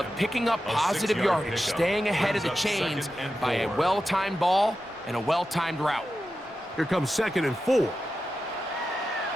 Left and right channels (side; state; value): both; normal; correlation 0.91